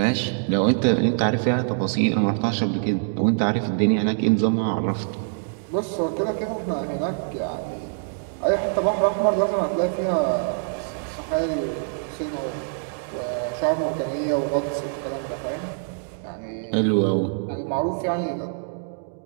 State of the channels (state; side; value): silent; left; digital silence